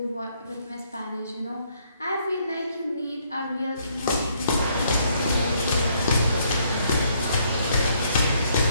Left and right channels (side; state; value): both; inverted; correlation -0.69